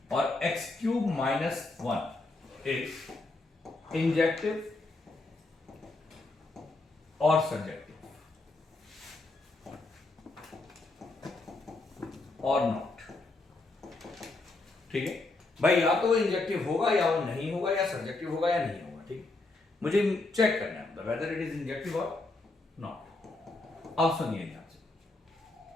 और x cube minus 1 is injective और subjective और नॉट। ठीक है भाई, या तो वो इंजेक्टिव होगा या वो नहीं होगा, या सब्जेक्टिव होगा या नहीं होगा। ठीक है, मुझे चेक करना है वेदर इट इज इंजेक्टिव और नॉट। अब सुनिए ध्यान से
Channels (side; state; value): right; quieter; 3.1 dB